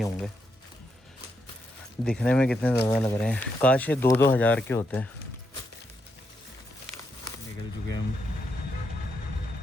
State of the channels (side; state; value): both; normal; correlation 0.80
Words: होंगे. दिखने में कितने ज़्यादा लग रहे हैं. काश ये 2-2 हज़ार के होते हैं. निकल चुके हम